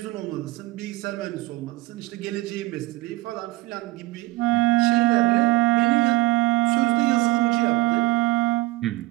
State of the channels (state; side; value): quieter; left; 20.5 dB